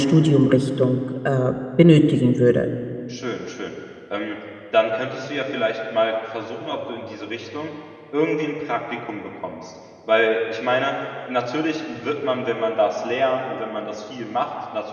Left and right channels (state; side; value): identical; both; correlation 1.00